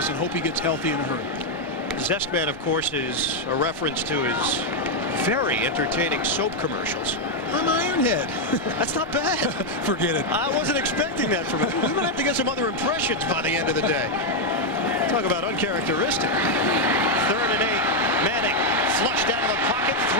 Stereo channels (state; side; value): noise; right; rumble, 24 dB below the sound